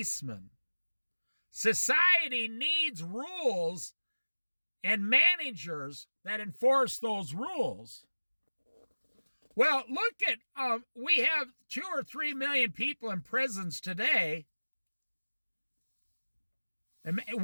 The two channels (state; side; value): inverted; both; correlation -1.00